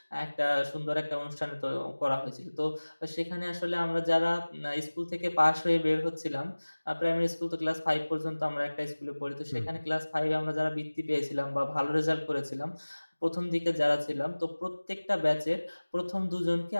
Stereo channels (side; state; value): both; inverted; correlation -1.00